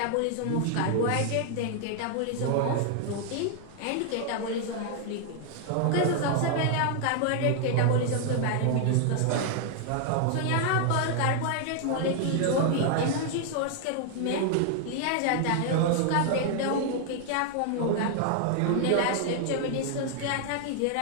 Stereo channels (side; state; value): both; different; correlation 0.00